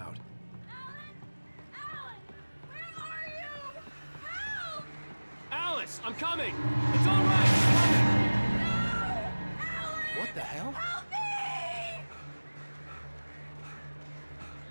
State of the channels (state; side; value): inverted; both; correlation -1.00